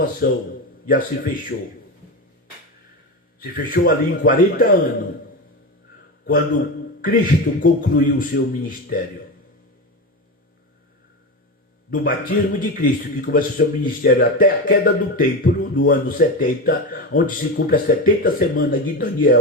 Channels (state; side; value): normal; both; correlation 0.20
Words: já se fechou. Se fechou ali em 40 anos, quando Cristo concluiu o seu ministério. Do batismo de Cristo, que começa o seu ministério até a queda do templo, no ano 70, onde se cumpre as 70 semanas de